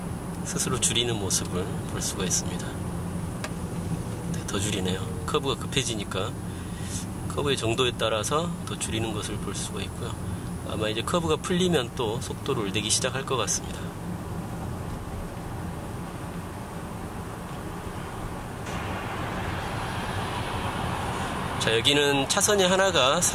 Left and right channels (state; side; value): identical; both; correlation 1.00